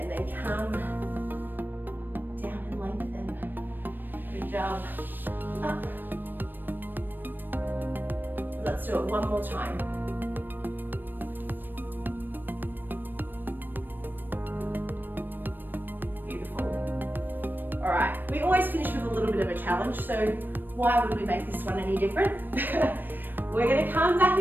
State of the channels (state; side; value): late; left; 0.093 ms